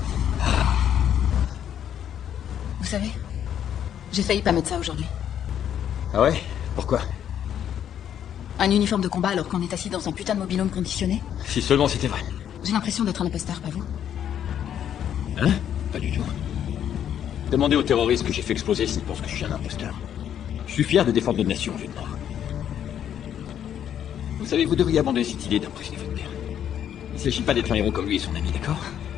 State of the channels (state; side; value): quieter; right; 9.7 dB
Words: Vous savez, j'ai failli pas mettre ça aujourd'hui. Ah ouais? Pourquoi? Un uniforme de combat alors qu'on est assis dans un putain de mobil-home conditionné? Si seulement c'était vrai. J'ai l'impression d'être un imposteur, pas vous? Hein? Pas du tout. Demandez aux terroristes que j'ai fait exploser s'ils pensent que je suis un imposteur. Je suis fier de défendre notre nation, lieutenant. Vous savez, vous devriez abandonner cette idée d'impressionner votre père. Il ne s'agit pas d'être un héros comme lui et son ami, d'accord?